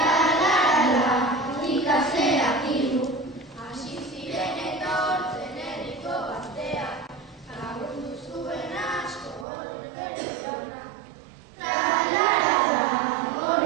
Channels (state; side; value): drops out; left; at 9.5 s